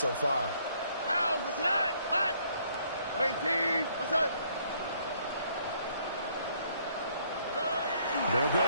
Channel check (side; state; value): both; inverted; correlation -0.66